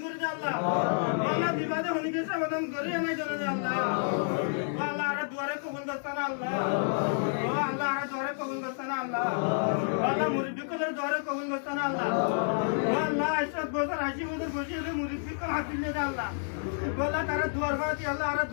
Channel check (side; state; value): right; silent; digital silence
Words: করে দে আল্লাহ আল্লাহ বিপদে হনিকে সমাধান করে না জানে আল্লাহ আল্লাহ আর দুয়ারে কবুল করতানা আল্লাহ ও আল্লাহ আর দুয়ারে কবুল করতানা আল্লাহ আল্লাহ মুরিদদের দুয়ারে কবুল করতানা আল্লাহ ও আল্লাহ 80 বছর 80 বছর বসে হলে মুরিদকে হাত দিলে দে আল্লাহ আল্লাহ তারা দুয়ার বাতি আল্লাহ আর